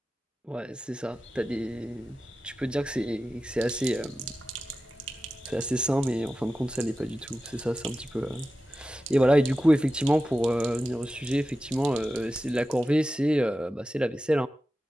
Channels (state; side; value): normal; both; correlation 0.93